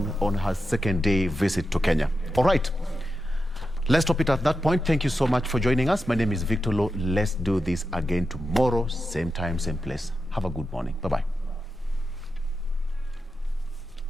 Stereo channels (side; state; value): both; normal; correlation 0.89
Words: her second day visit to Kenya. All right. Let's stop it at that point. Thank you so much for joining us. My name is Victor Lo. Let's do this again tomorrow, same time, same place. Have a good morning. Bye-bye.